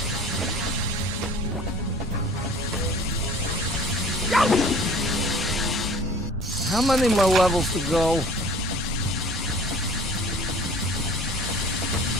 How many more levels to go?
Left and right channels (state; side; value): normal; both; correlation 0.47